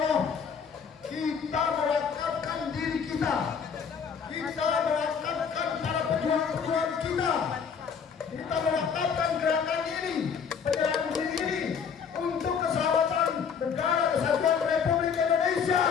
kita mewakafkan diri kita mewakafkan para pejuang-pejuang kita mewakafkan gerakan ini, penyerahan diri ini untuk keselamatan negara kesatuan Republik Indonesia.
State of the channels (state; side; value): quieter; right; 6.6 dB